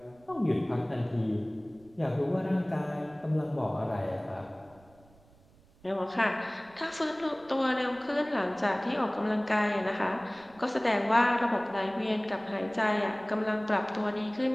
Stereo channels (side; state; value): right; noise; rumble, 28 dB below the sound